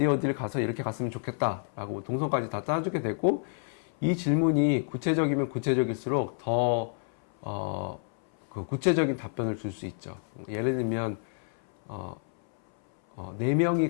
가서 이렇게 갔으면 좋겠다라고 동선까지 다 짜주게 되고, 이 질문이 구체적이면 구체적일수록 더 그 구체적인 답변을 줄 수 있죠. 예를 들면 4명이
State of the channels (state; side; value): silent; right; 59 dB below the other